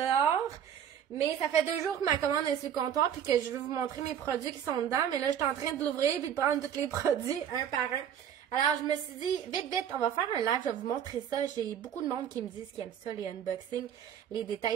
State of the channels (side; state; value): left; quieter; 9.1 dB